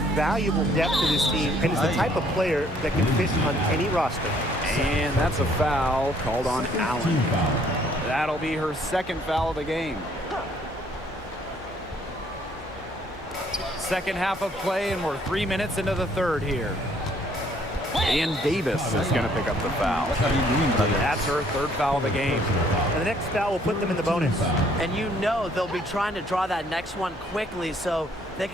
valuable depth to this team and is the type of player that can fit on any roster. And that's a foul called on Team Allen. foul. That'll be her second foul of the game. Second half of play, and we're 3 minutes into the third here. And Davis is going to pick up the foul. What are you doing, brother? That's her third foul of the game. And the next foul will put them in the bonus. And you know they'll be trying to draw that next one quickly so they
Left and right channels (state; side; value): normal; both; correlation 0.64